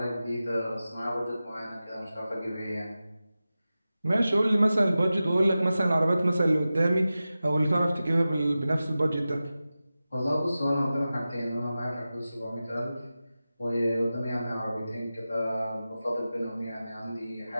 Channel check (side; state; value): both; inverted; correlation -0.94